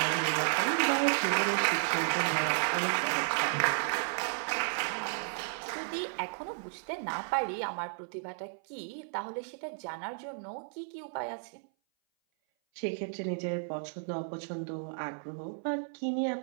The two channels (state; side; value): silent; left; 56 dB below the other